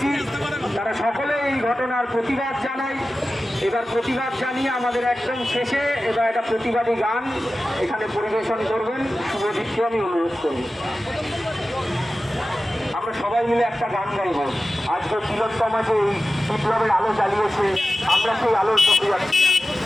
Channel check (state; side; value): normal; both; correlation 0.95